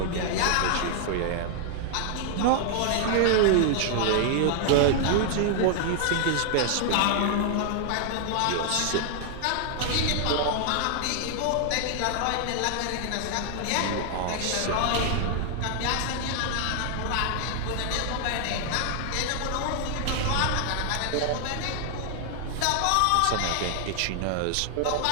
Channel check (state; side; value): different; both; correlation 0.00